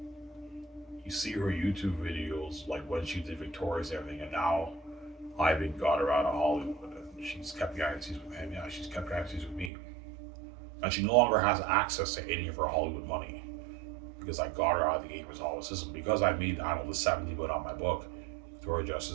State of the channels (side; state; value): left; drops out; at 9.7 s